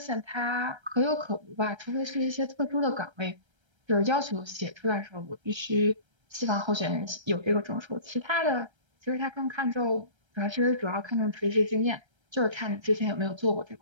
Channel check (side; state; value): left; late; 1.3 ms